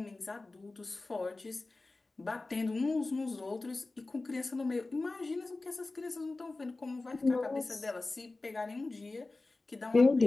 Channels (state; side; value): quieter; right; 3.3 dB